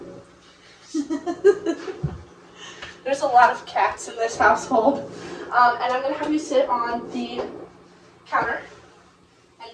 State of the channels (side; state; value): both; identical; correlation 1.00